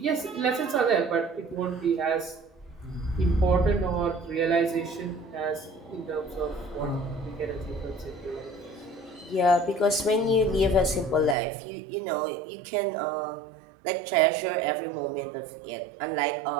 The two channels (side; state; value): left; drops out; at 11.4 s